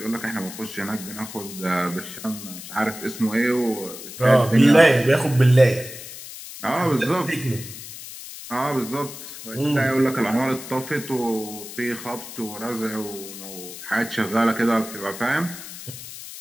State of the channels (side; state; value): left; noise; hiss, 12 dB below the sound